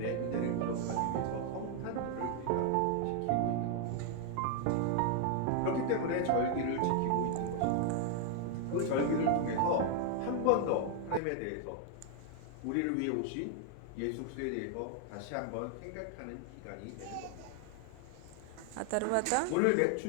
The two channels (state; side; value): different; both; correlation 0.00